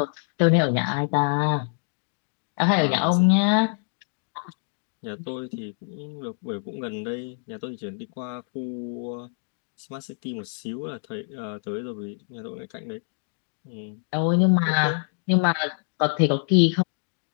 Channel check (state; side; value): silent; right; digital silence